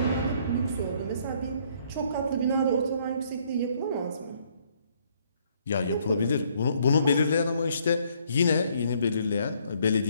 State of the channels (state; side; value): inverted; both; correlation -0.66